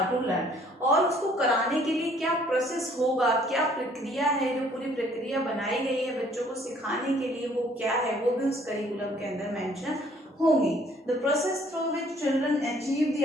to learn, और उसको कराने के लिए क्या प्रोसेस होगा, क्या प्रक्रिया है, जो पूरी प्रक्रिया बनाई गई है बच्चों को सिखाने के लिए वो क्या है, वो भी उस करिकुलम के अंदर मेंशन होंगी। The process through which children achieve the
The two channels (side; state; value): both; normal; correlation 0.60